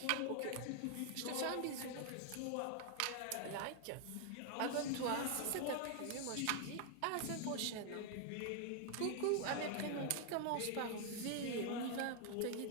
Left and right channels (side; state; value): both; different; correlation 0.00